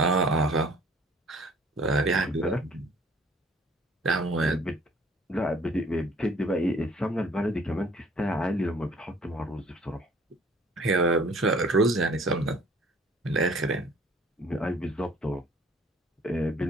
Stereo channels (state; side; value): normal; both; correlation 0.55